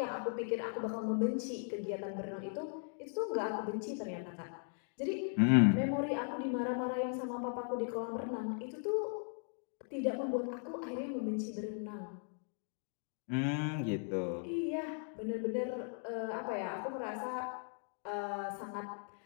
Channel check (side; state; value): right; silent; 52 dB below the other